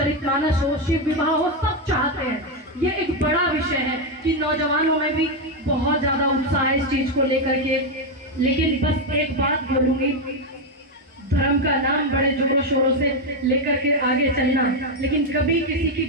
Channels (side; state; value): both; normal; correlation 0.05